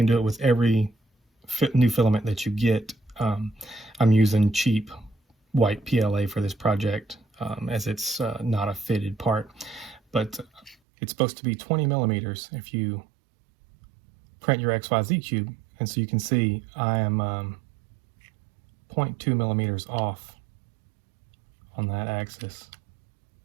do it with every new filament that you get. I'm using cheap white PLA for this project as it's not a fitted part, but it's supposed to be 20 millimeters if you print your XYZ cube. And so you can see I am 0.2 millimeters off on that axis.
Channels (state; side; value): drops out; left; at 10.8 s